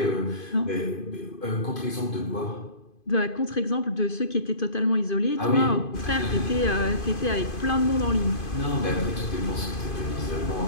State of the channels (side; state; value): right; late; 2.5 ms